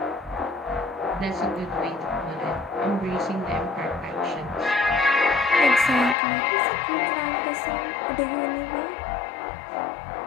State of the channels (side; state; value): right; drops out; at 6.2 s